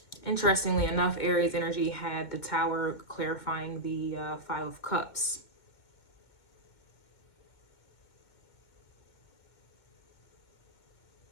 Interestingly enough, Aries energy had the Tower clarifying the 5 of Cups.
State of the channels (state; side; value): late; right; 2.2 ms